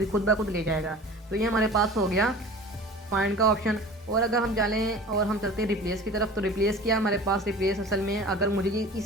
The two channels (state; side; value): normal; both; correlation 0.40